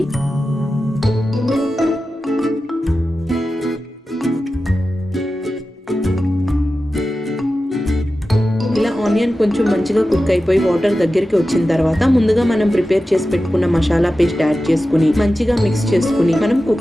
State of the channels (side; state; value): both; normal; correlation 0.93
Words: ఇలా ఆనియన్ కొంచెం మంచిగా కుక్ అయిపోయి వాటర్ దగ్గరికి వచ్చిన తర్వాత ముందుగా మనం ప్రిపేర్ చేసి పెట్టుకున్న మసాలా పేస్ట్ యాడ్ చేసుకుని మంచిగా మిక్స్ చేసుకుని మనం